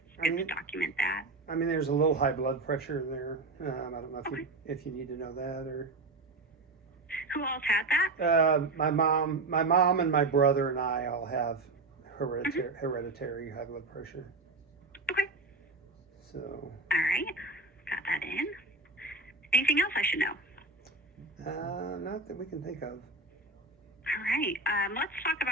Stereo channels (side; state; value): left; quieter; 3.4 dB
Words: it's good to document that. I mean, there's a little high blood pressure in there. I don't know if you need to know that or. Who else had that? My mom, and my brother and I all have hereditary high blood pressure. Okay. So. All right. Got that in. Anything else I should know? Not that we can think of. All right. Let's talk